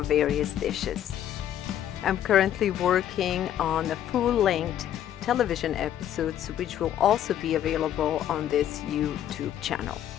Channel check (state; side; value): quieter; right; 10.9 dB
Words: various dishes. I'm currently working on the full-length television episodes which will also be available on this YouTube channel.